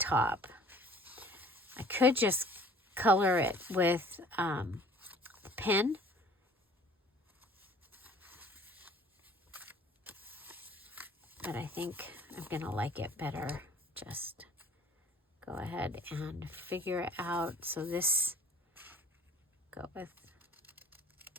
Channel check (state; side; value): normal; both; correlation 0.52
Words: I could just color it with the pen. But I think I'm going to like it better. Just go ahead and figure it out. So this, go with